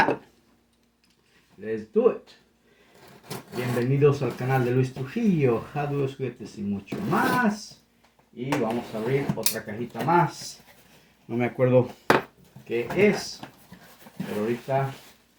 Let's do it. Bienvenidos al canal de Luis Trujillo, Hot Wheels, juguetes y mucho más. Y vamos a abrir otra cajita más. No me acuerdo qué es, pero ahorita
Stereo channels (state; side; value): identical; both; correlation 1.00